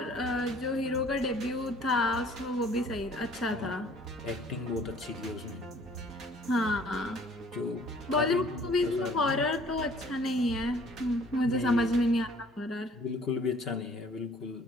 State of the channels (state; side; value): normal; both; correlation 0.55